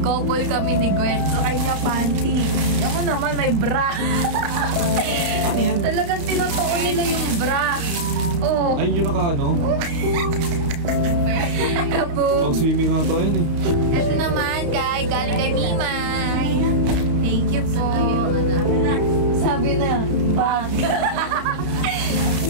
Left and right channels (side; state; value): left; late; 32 ms